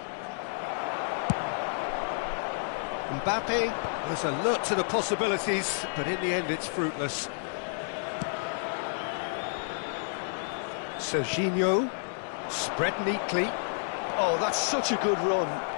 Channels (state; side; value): silent; right; digital silence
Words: Mbappe was alert to the possibilities, but in the end it's fruitless. Serginho, spread neatly. Oh, that's such a good run.